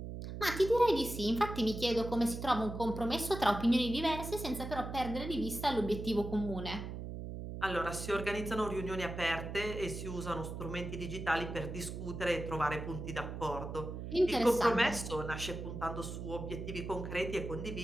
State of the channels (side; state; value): right; noise; hum, 7 dB below the sound